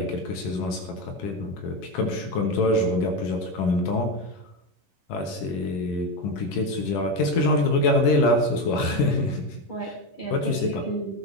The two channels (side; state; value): right; late; 11 ms